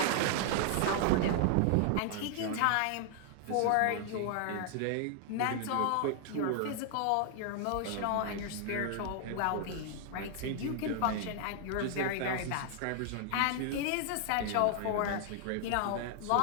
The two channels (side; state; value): both; different; correlation 0.00